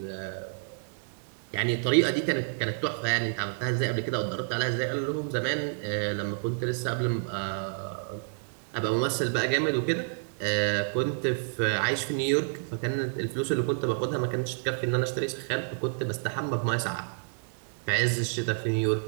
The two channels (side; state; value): left; silent; digital silence